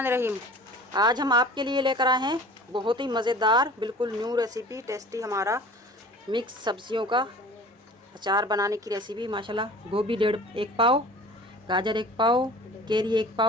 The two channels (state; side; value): normal; both; correlation 0.43